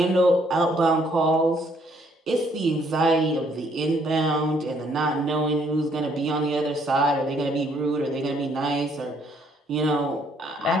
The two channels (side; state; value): both; normal; correlation 0.67